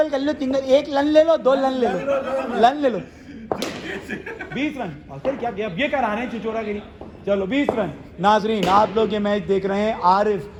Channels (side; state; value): both; identical; correlation 1.00